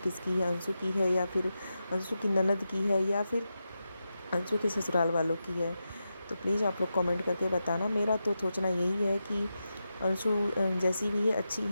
है, अंशु की है, या फिर अंशु की ननद की है, या फिर अंशु के ससुराल वालों की है? तो प्लीज़ आप लोग कमेंट करके बताना। मेरा तो सोचना यही है कि अंशु जैसी भी है अच्छी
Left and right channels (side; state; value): both; inverted; correlation -0.89